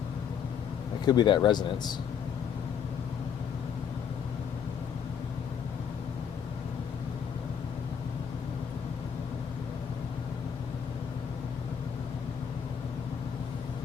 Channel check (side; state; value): right; quieter; 7.6 dB